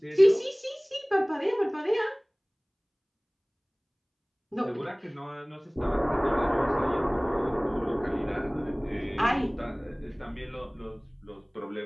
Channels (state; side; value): identical; both; correlation 1.00